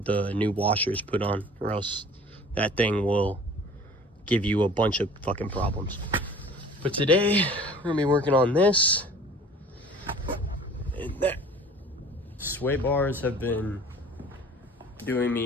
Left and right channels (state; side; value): normal; both; correlation 0.47